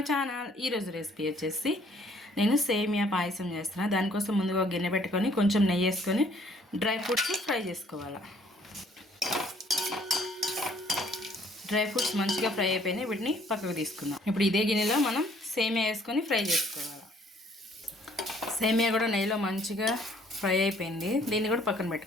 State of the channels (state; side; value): normal; both; correlation 0.61